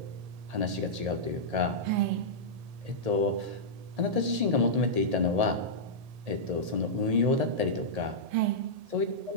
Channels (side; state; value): left; late; 1.8 ms